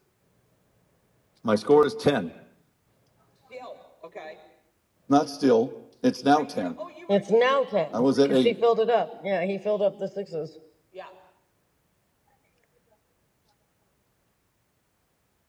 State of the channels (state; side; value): identical; both; correlation 1.00